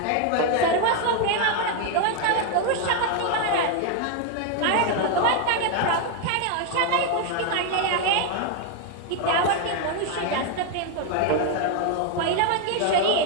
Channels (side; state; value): both; different; correlation 0.01